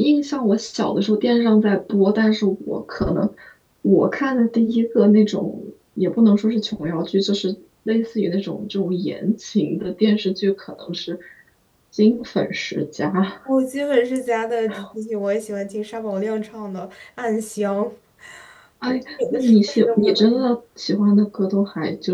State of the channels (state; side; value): identical; both; correlation 1.00